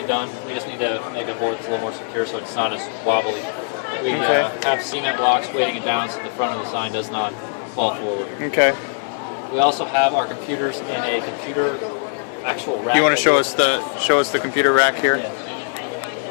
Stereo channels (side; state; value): right; silent; digital silence